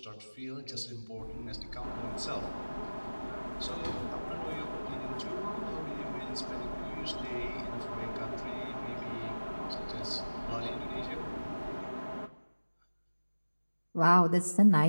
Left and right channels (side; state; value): both; inverted; correlation -1.00